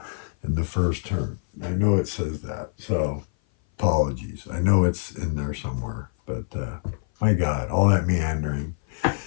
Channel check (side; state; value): right; silent; 57 dB below the other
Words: In the first turn. I know it says that. So apologies. I know it's in there somewhere. But my God, all that meandering.